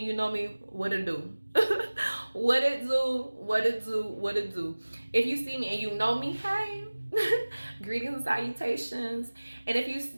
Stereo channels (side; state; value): both; inverted; correlation -1.00